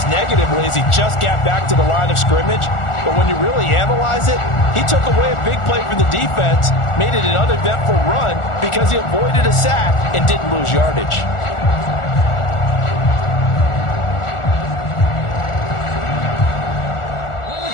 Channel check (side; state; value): right; late; 1.4 ms